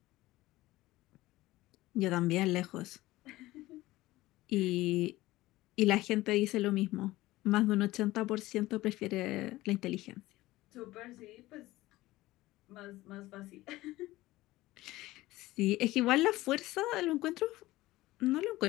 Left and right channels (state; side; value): quieter; right; 17.8 dB